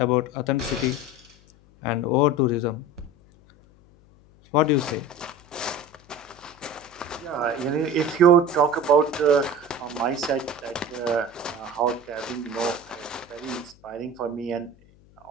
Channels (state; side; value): noise; left; hum, 27 dB below the sound